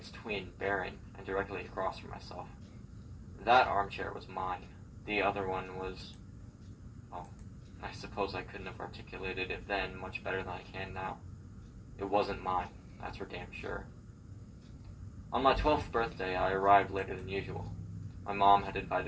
twin barren and directly across from myself. That armchair was mine. The other one was, well, I suppose I couldn't have articulated it then much better than I can now. It wasn't mine, that's for damn sure. On my 12th birthday, I arrived later than usual. My mom had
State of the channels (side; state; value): both; identical; correlation 1.00